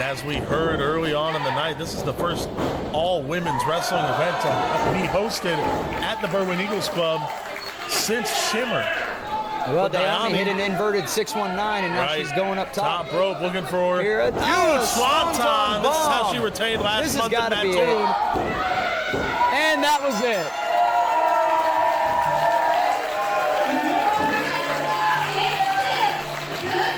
as we heard early on in the night, this is the first all-women's wrestling event to be hosted at the Berwyn Eagles Club since Shimmer. Well, Diami hit an inverted 619, and now she's going up top. Top rope, looking for a huge swanton. This is how she retained last month in Mattoon. And that was it.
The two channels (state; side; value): identical; both; correlation 1.00